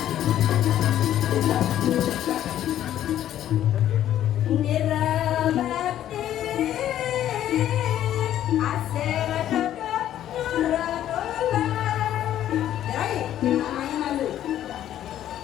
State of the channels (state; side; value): quieter; right; 11.7 dB